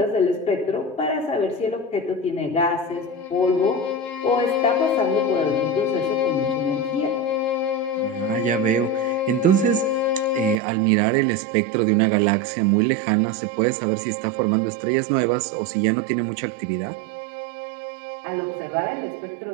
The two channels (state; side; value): drops out; left; at 10.6 s